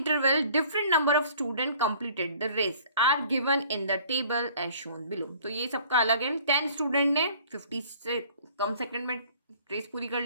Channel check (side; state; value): both; inverted; correlation -0.53